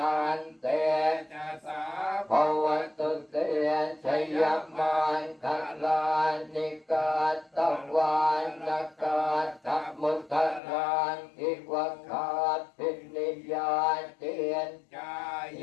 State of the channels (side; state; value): right; drops out; at 10.6 s